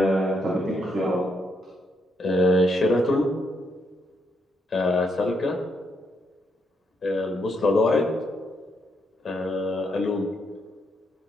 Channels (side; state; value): both; normal; correlation 0.77